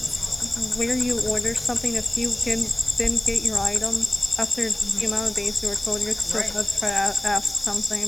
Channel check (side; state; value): left; noise; hiss, 16 dB below the sound